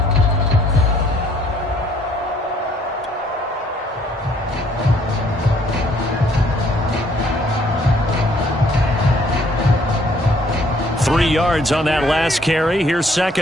Yards on that last carry. Here's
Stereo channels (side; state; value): both; normal; correlation 0.63